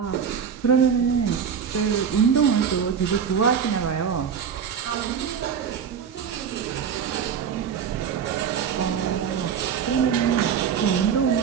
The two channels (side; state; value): left; quieter; 7.4 dB